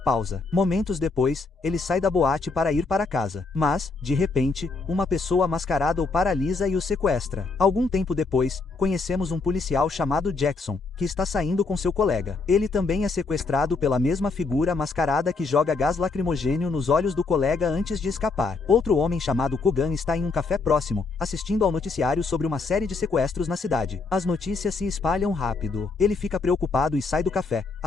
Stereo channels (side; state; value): right; quieter; 4.1 dB